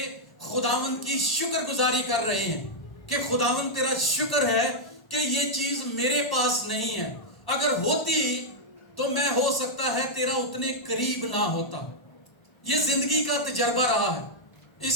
خداوند کی شکر گزاری کر رہے ہیں کہ خداوند تیرا شکر ہے کہ یہ چیز میرے پاس نہیں ہے، اگر ہوتی تو میں ہو سکتا ہے تیرا اتنے قریب نہ ہوتا۔ یہ زندگی کا تجربہ رہا ہے۔ اس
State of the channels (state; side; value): late; right; 1.1 ms